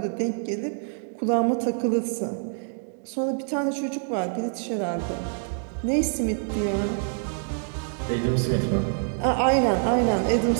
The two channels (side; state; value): left; silent; 61 dB below the other